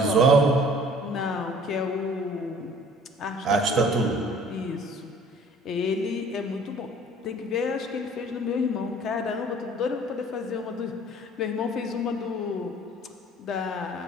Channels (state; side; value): normal; both; correlation 0.51